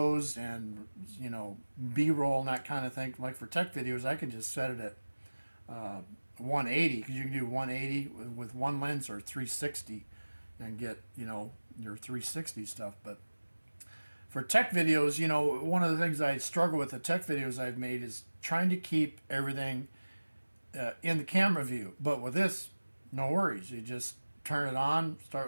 and, you know, B-roll and that kind of thing. Like for tech videos, I can just set it at 180, because you can do 180 with one lens, or 360 and get, you know, your 360 stuff. But for tech videos, you know, one of the things I struggle with the tech videos I've made is trying to keep everything in the camera view. But with this, no worries. You just turn it on,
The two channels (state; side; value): inverted; both; correlation -1.00